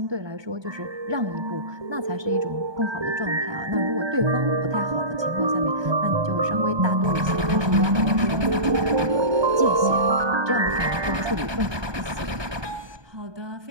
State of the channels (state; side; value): late; left; 1.2 ms